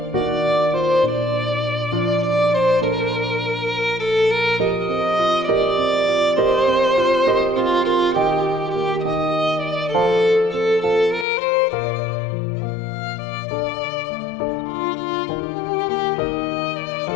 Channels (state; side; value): drops out; right; at 11.2 s